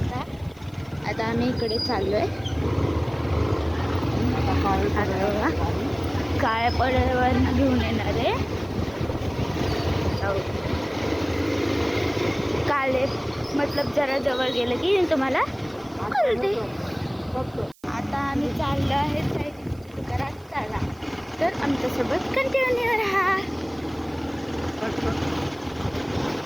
आता आम्ही इकडे चाललोय. काळ्या पडद्यावर घेऊन येणार आहे. काले मतलब जरा जवळ गेलं की तुम्हाला कळते. आता आम्ही चाललो आहे चायनीज दुकानात. चला तर आमच्यासोबत कंटिन्यू राहा.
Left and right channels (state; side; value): noise; right; hiss, 29 dB below the sound